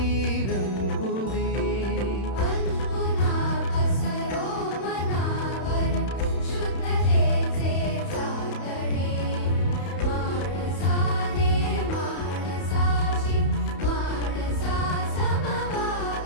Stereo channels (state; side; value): late; right; 31 ms